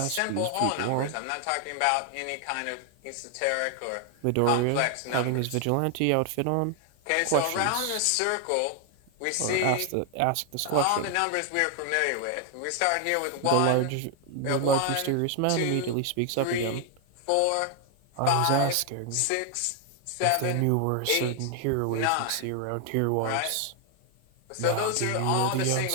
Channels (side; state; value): both; different; correlation 0.00